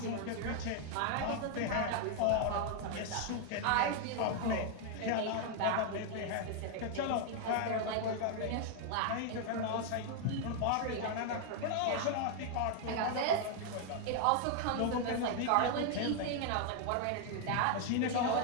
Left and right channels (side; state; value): both; different; correlation 0.00